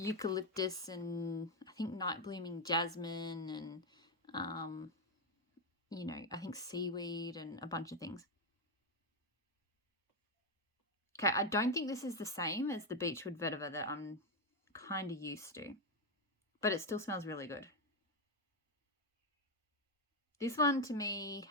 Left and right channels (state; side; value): normal; both; correlation 0.06